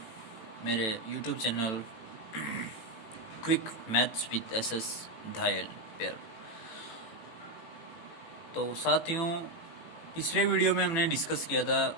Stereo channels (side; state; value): right; late; 18 ms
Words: मेरे YouTube channel quick maths with SS धायल पर। तो साथियों, पिछले वीडियो में हमने डिस्कस किया था